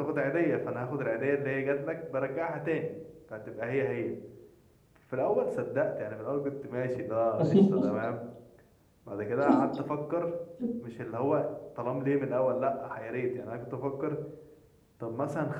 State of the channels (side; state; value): both; identical; correlation 1.00